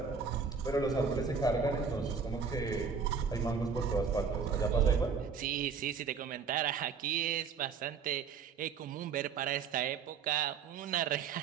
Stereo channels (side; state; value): left; quieter; 5.9 dB